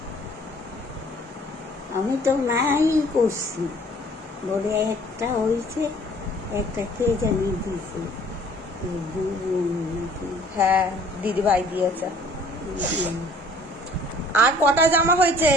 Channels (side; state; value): both; normal; correlation 0.55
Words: আমি তো নাই করছি, বলে একটা হয়েছে, একটা কে জানি দিছে, হ্যাঁ, দিদি ভাই দিয়েছে। আর কটা জামা হয়েছে?